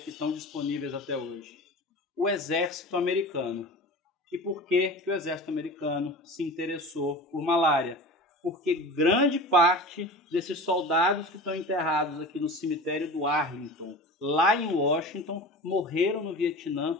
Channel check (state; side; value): normal; both; correlation 0.34